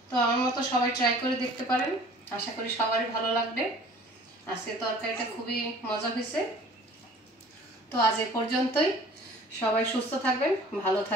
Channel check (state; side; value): normal; both; correlation 0.50